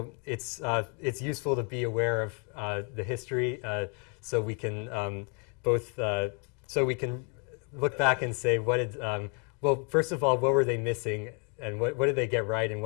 it's useful to be aware of the history, so we can so we can look back and say what did well, first of all, what were they missing, and what did they get right, and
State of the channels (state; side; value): quieter; right; 36.0 dB